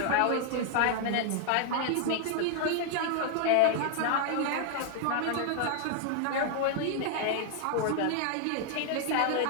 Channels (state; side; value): different; both; correlation -0.01